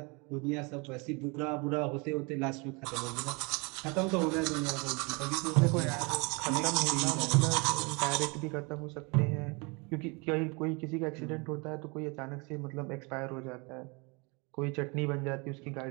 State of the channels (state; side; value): quieter; left; 29.6 dB